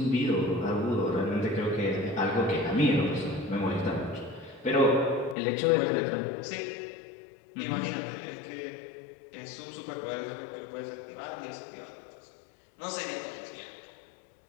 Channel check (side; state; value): right; drops out; at 5.4 s